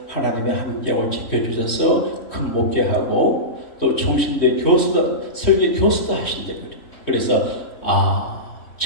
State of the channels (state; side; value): late; right; 3.1 ms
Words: 하나님의 함께하고 지켜주셔서 큰 목회하고 또 총신대 교수도 설교 교수도 하신대. 그래서